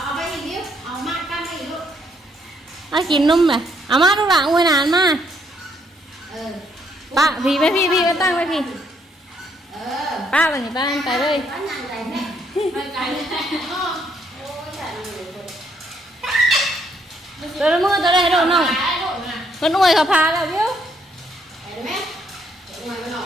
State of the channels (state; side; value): normal; both; correlation 0.71